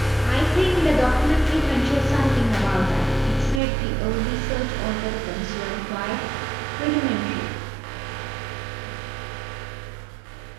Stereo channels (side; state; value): left; drops out; at 3.6 s